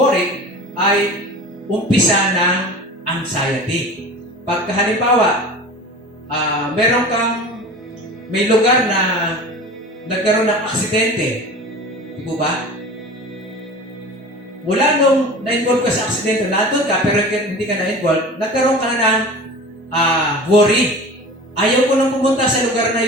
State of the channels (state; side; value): normal; both; correlation 0.37